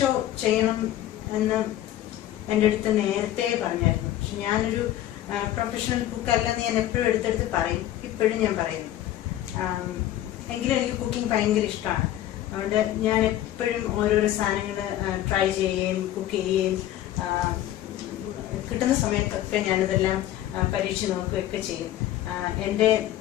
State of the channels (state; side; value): quieter; right; 13.2 dB